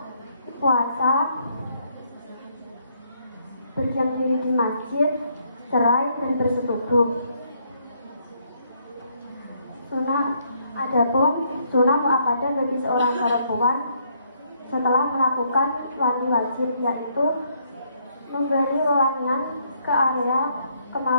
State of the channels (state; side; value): inverted; both; correlation -0.71